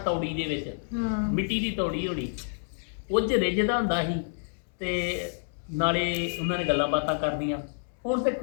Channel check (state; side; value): silent; right; digital silence